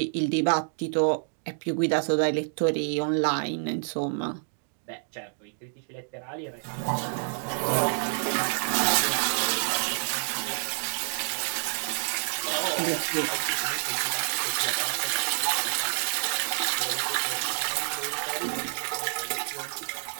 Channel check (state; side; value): silent; left; digital silence